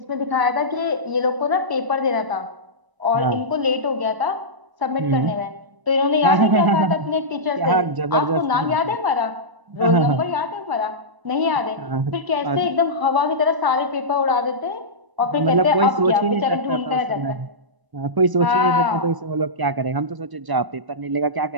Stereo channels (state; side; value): late; left; 1.0 ms